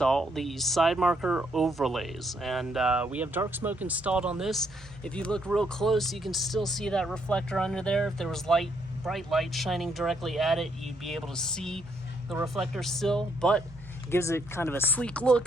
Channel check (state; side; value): normal; both; correlation 0.74